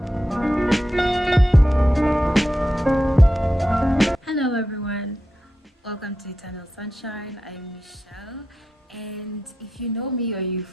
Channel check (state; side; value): normal; both; correlation 0.88